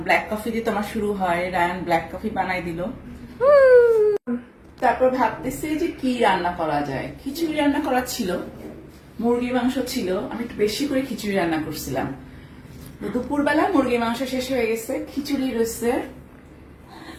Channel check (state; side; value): identical; both; correlation 1.00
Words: ব্ল্যাক কফি দিয়ে তোমার শুরু হয়, রায়ান ব্ল্যাক কফি বানাই দিল। তারপর ভাবতেছি যে কি রান্না করা যায়। খিচুড়ি রান্না করা ছিল, মুরগির মাংস ছিল, আমি একটু বেশি করে খিচুড়ি রান্না করছিলাম। দুপুরবেলা মুরগির মাংস শেষ হয়ে গেছে, খিচুড়ি রয়েছে।